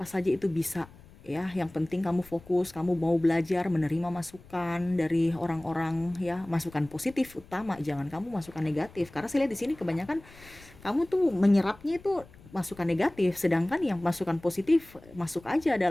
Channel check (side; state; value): left; noise; rumble, 22 dB below the sound